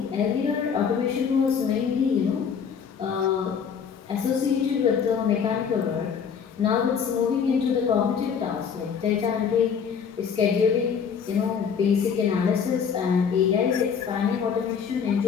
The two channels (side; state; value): right; quieter; 6.9 dB